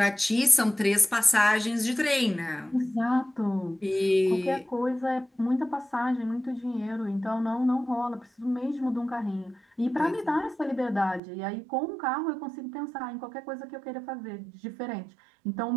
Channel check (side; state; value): left; drops out; at 11.2 s